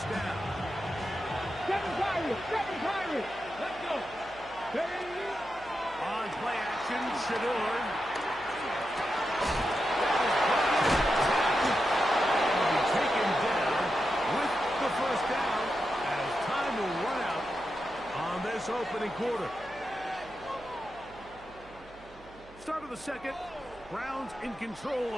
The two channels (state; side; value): noise; right; hum, 22 dB below the sound